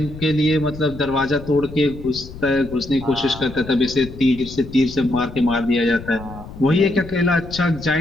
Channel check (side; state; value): left; noise; rumble, 14 dB below the sound